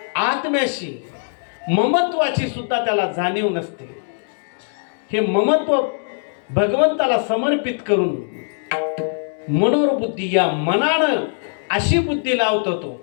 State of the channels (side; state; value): right; silent; digital silence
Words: आत्म्याशी ममत्वाची सुद्धा त्याला जाणीव नसते. हे ममत्व भगवंताला समर्पित करून मनोरबुद्धी, या मनानं अशी बुद्धी लावतो. तो